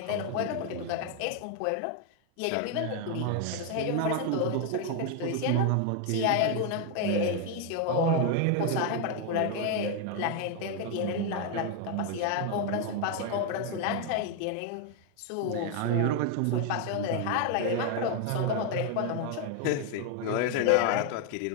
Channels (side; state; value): both; different; correlation 0.01